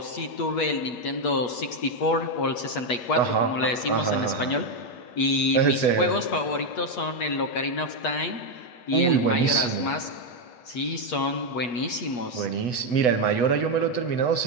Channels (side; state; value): right; late; 8.3 ms